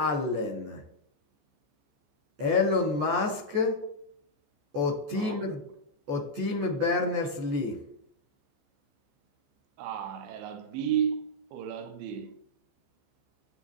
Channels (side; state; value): left; late; 14 ms